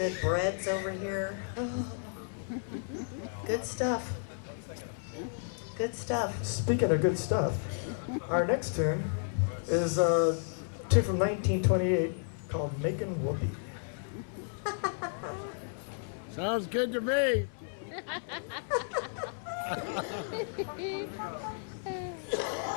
breads over here. Oh, good stuff. Good stuff. Speaking of good stuff, our next tune is a tune from 1928. Called Making Whoopee. Sounds good to me.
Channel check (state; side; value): silent; right; 56 dB below the other